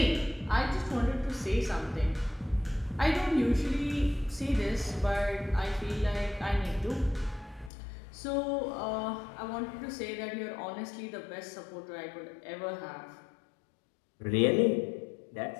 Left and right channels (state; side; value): drops out; right; at 7.7 s